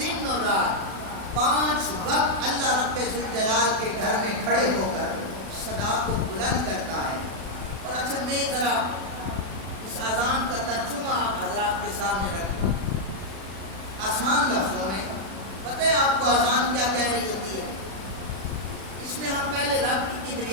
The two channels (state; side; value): late; left; 36 ms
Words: اور رات 5 وقت اللہ رب ذوالجلال کے گھر میں کھڑے ہو کر صدا کو بلند کرتا ہے۔ اور اچھا میں ذرا اس اذان کا ترجمہ حضرات کے سامنے رکھوں آسان لفظوں میں۔ پتہ ہے آپ کو اذان کیا کہہ رہی ہوتی ہے؟ اس میں ہم پہلے رب کی